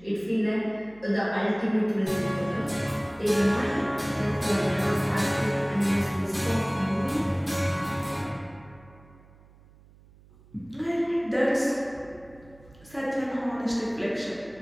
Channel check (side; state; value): right; noise; hum, 25 dB below the sound